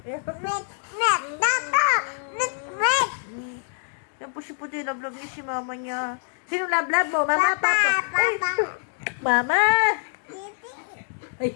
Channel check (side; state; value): right; silent; 62 dB below the other